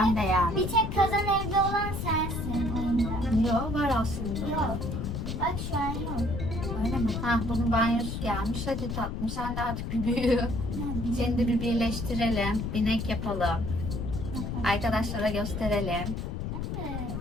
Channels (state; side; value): noise; left; rumble, 4 dB below the sound